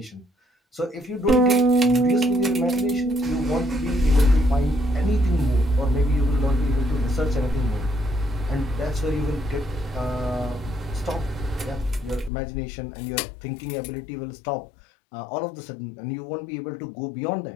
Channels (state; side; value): drops out; right; at 12.3 s